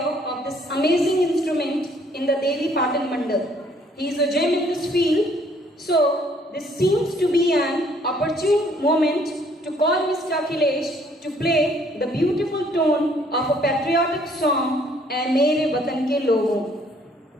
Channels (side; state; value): both; normal; correlation 0.63